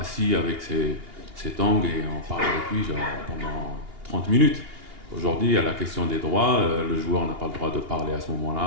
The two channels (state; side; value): late; left; 2.8 ms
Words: avec ses tongs, et on parle avec lui genre, pendant 30 minutes. Aujourd'hui, il y a la question des droits. Le joueur n'a pas le droit de parler à ce